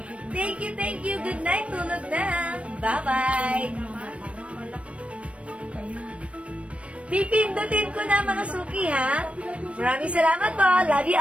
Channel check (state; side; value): late; left; 0.062 ms